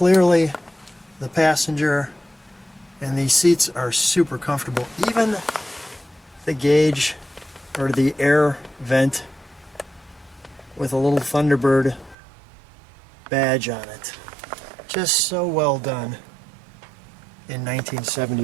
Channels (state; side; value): drops out; left; at 12.2 s